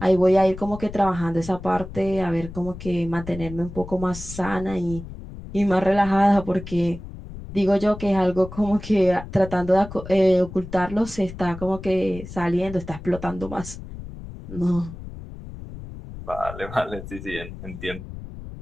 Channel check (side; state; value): left; noise; rumble, 12 dB below the sound